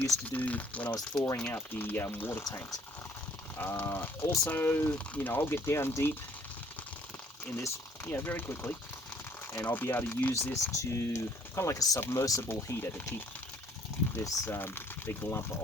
to do when I was thawing out the water tanks. Also, you know, I'll get down deep in this, you know, very quickly, and I'll be able to use this to kind of like a submersible heater to keep this big lump of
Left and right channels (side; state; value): both; normal; correlation 0.60